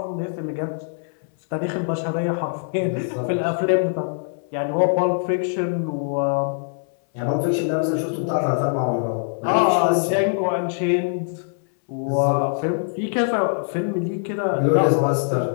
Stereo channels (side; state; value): right; silent; 64 dB below the other